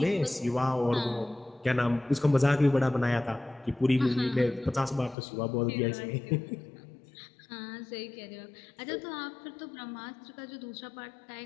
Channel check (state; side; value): drops out; right; at 5.2 s